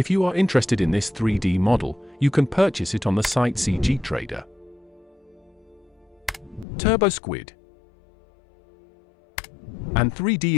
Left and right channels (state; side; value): drops out; right; at 6.7 s